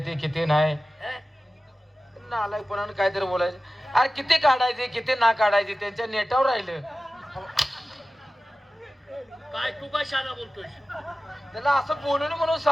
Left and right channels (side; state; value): both; normal; correlation 0.95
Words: ते किती नाही. हे? नालायकपणाने काहीतरी बोलायचं. अरे किती काढायचे किती ना काढायचे त्यांच्या नेटावर राहिलं. काय तू काय शाना बोलतोय? त्याला असं बोलून म्हणून